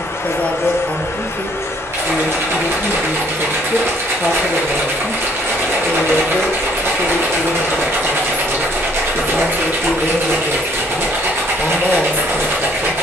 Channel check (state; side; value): normal; both; correlation 0.62